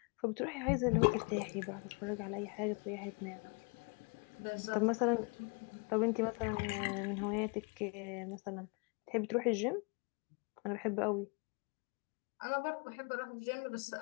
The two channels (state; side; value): quieter; right; 32.9 dB